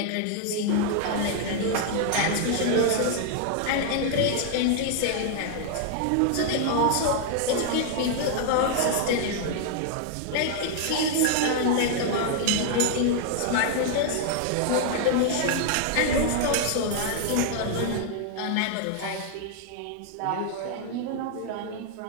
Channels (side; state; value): both; different; correlation 0.00